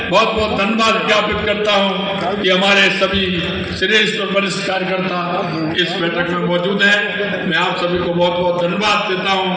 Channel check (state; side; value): identical; both; correlation 1.00